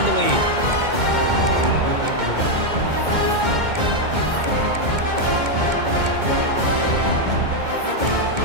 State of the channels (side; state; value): left; late; 2.2 ms